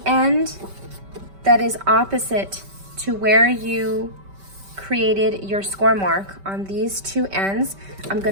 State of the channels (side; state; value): left; late; 5.2 ms